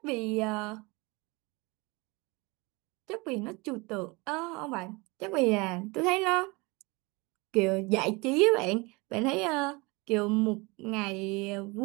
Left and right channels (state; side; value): quieter; left; 26.0 dB